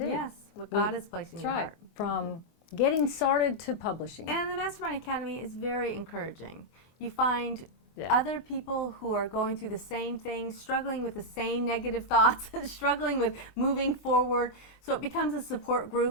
Yes, what God is placing in your heart. From getting started to publishing. And the Mastermind Academy is very encouraging. You find other people who are going through the same thing, struggling with the same negative thoughts, struggling with moving forward. So it becomes a support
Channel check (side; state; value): right; late; 24 ms